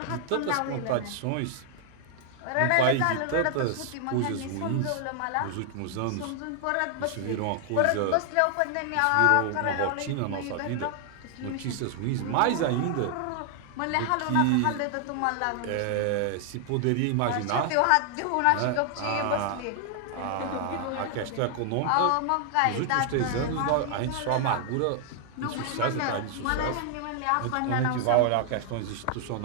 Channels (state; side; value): different; both; correlation 0.00